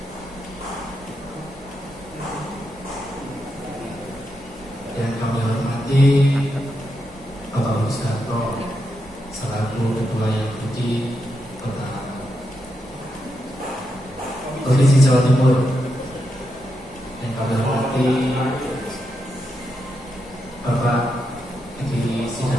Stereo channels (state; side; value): normal; both; correlation 0.84